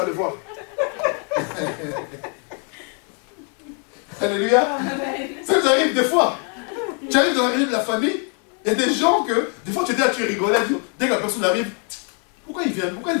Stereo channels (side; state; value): right; quieter; 40.0 dB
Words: le voir. Alléluia. Ça nous arrive des fois. Tu arrives dans la réunion de la famille, il y a des gens que, des fois tu dis, tu rigolais, dès que la personne arrive, pourquoi il vient? Pourquoi il